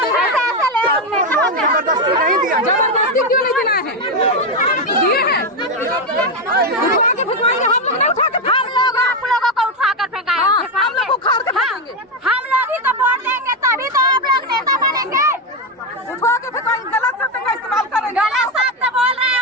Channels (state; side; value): normal; both; correlation 0.08